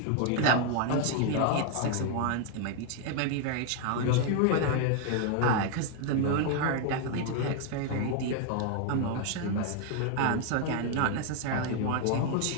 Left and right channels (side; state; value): both; different; correlation 0.00